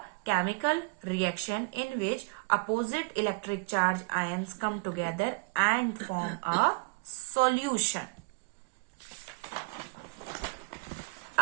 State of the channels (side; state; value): left; quieter; 29.9 dB